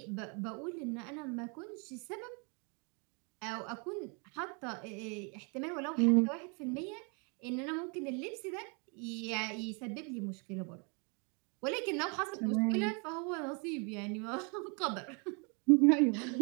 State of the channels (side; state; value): left; quieter; 34.5 dB